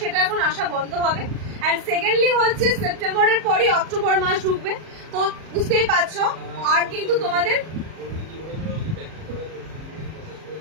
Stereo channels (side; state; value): left; late; 38 ms